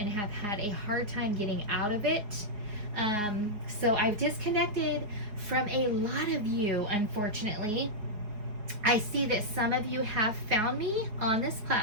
have had a hard time getting out of it. So I've disconnected from a lot of you, unfortunately. I see that some of you have found me on this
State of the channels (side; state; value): left; late; 4.8 ms